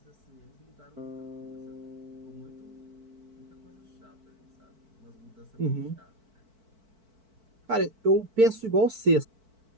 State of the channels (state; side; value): late; left; 4.5 ms